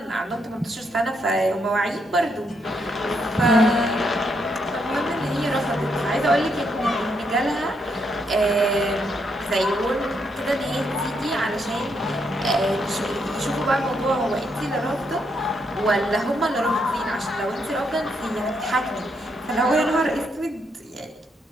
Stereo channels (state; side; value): normal; both; correlation 0.77